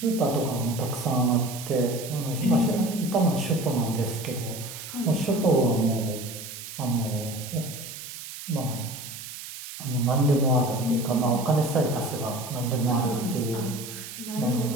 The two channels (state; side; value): noise; right; hiss, 11 dB below the sound